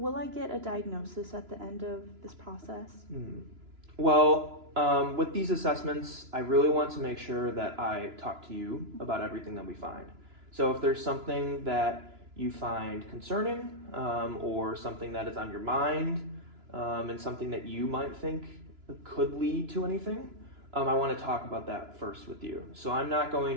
I get a diagnosis at the end of this process? Well, with these assessments, I really want to make sure that I talk to you about everything that we find. So if there's something that you find concerning or something that is on your mind and something that you might think could lead to anything, I want to talk about that first with you. So I'm not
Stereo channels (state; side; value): late; left; 2.9 ms